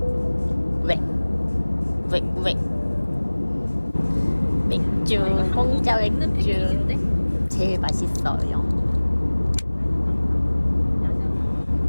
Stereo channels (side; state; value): both; inverted; correlation -1.00